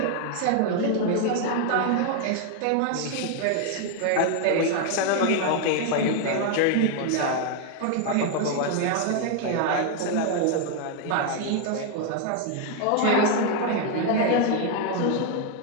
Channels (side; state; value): both; different; correlation 0.00